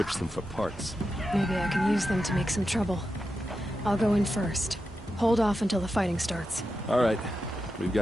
them for parts. Maybe I can use them to make some trouble. I'll go in first. Hold off until the fighting starts. All right. We've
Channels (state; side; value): normal; both; correlation 0.89